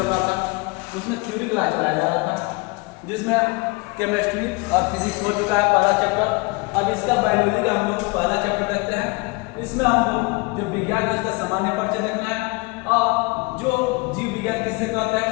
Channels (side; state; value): right; quieter; 26.9 dB